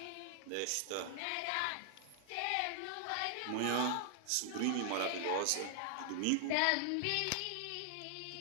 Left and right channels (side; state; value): both; different; correlation 0.00